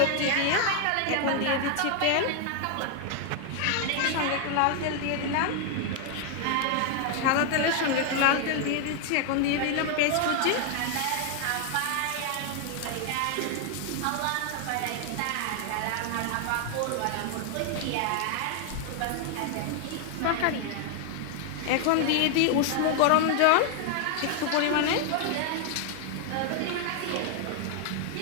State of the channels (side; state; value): both; different; correlation 0.00